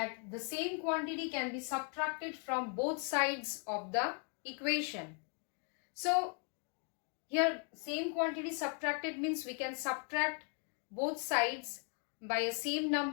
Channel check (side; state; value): right; quieter; 39.0 dB